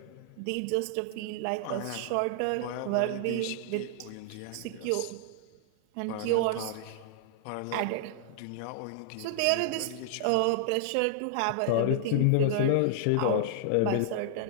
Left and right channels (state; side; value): different; both; correlation -0.01